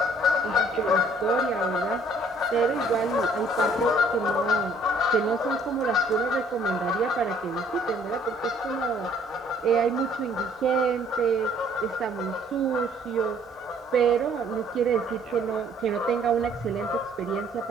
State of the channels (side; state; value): both; normal; correlation 0.60